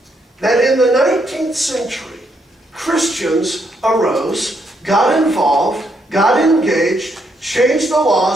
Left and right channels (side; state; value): both; normal; correlation 0.76